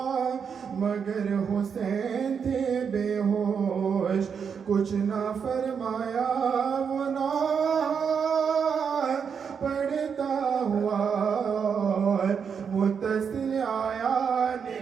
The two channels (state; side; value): quieter; left; 6.7 dB